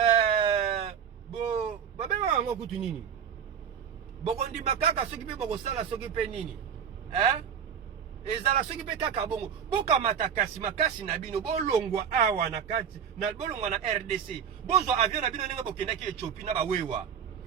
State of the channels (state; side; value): quieter; left; 7.9 dB